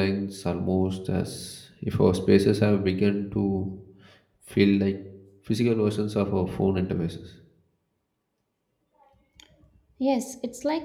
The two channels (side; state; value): both; identical; correlation 1.00